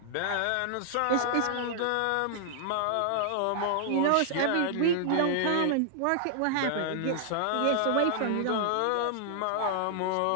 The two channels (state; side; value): different; both; correlation -0.01